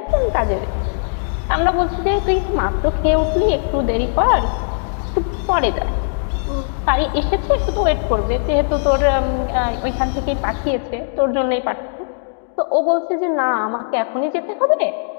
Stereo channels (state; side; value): silent; right; digital silence